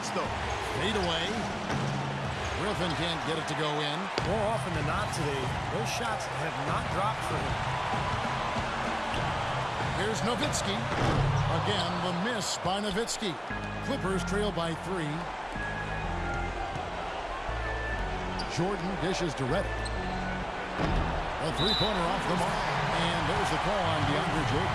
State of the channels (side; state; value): both; identical; correlation 1.00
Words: though. Fade away. Griffin can't get it to go in. More often than not today, those shots have not dropped for him. Here's Nowitzki. Again, the miss by Nowitzki. Clippers trail by 3. Jordan dishes to Reddick. A three-pointer off the mark. And there's the call on DeAndre